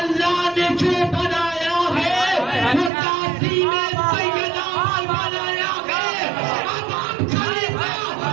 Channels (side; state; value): left; drops out; at 2.9 s